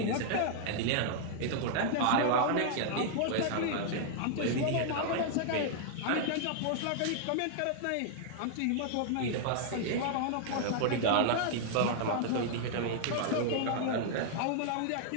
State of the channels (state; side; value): different; both; correlation -0.01